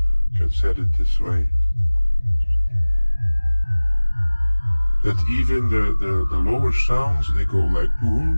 can set it this way. That even the lower sounds, they go like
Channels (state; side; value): inverted; both; correlation -1.00